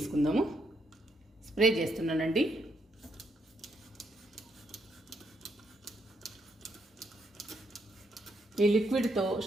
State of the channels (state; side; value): normal; both; correlation 0.76